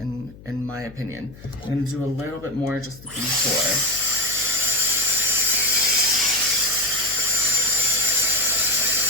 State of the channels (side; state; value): left; noise; hum, 20 dB below the sound